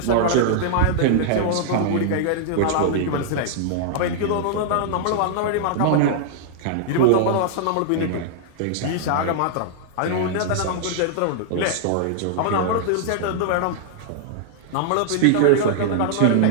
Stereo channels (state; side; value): different; both; correlation -0.01